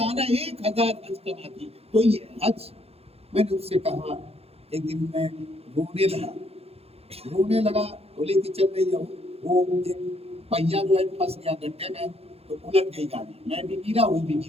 1000 حج کماتی ہے. تو یہ حج، میں نے اس سے کہا، ایک دن میں رونے لگا، بولے کہ چل رہی ہے وہ ایک پہیا جو ہے پھنس گیا گڈھے میں، تو الٹ گئی گاڑی، میں بھی گرا، وہ بھی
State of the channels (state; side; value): late; left; 0.29 ms